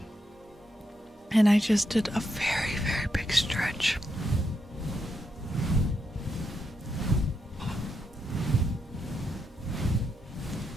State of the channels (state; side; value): normal; both; correlation 0.82